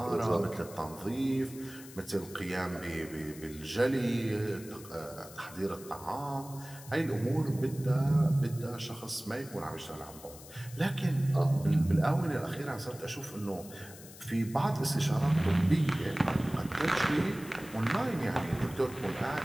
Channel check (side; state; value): left; noise; hiss, 17 dB below the sound